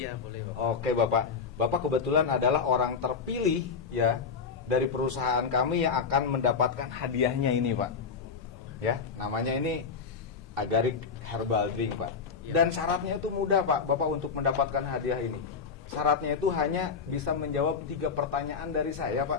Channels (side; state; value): right; quieter; 5.6 dB